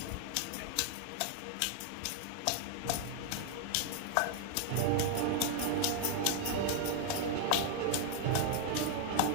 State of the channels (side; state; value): both; different; correlation -0.01